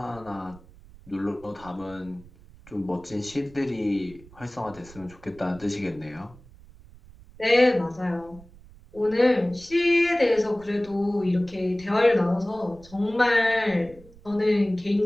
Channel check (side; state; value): right; noise; rumble, 22 dB below the sound